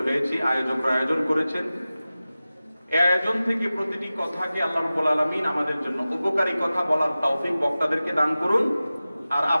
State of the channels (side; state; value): both; inverted; correlation -0.96